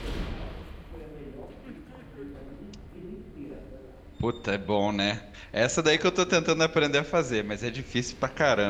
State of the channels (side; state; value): both; identical; correlation 1.00